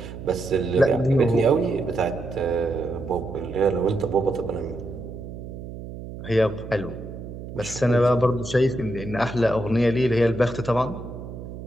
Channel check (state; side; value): noise; right; hum, 11 dB below the sound